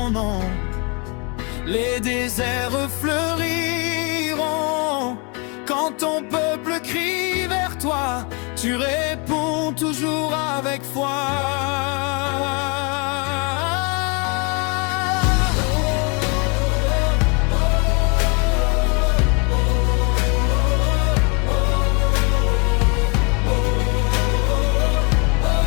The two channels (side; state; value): right; quieter; 32.9 dB